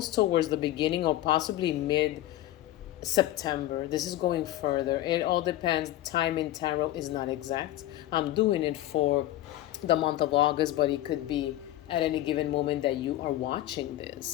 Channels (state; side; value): quieter; right; 14.8 dB